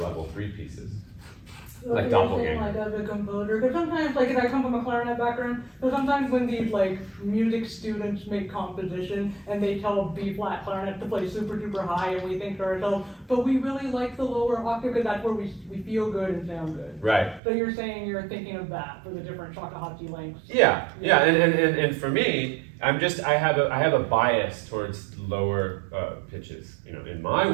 level 3 pieces. Like doppelganger. Like as a composer, because sometimes, like, I come from a clarinet background, so sometimes when these like music students make composition and they tell B flat clarinet to play super duper high, and we think to ourselves, but we really like the lower octave because that's where we feel good and sound good. Right. So you're saying you're thinking of that for the different Shakuhachi lengths. Yeah, and for me, I have a bias towards lower pitches. In my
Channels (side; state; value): left; drops out; at 17.4 s